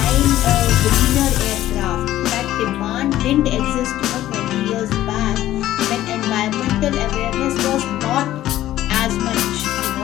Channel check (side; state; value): right; quieter; 13.8 dB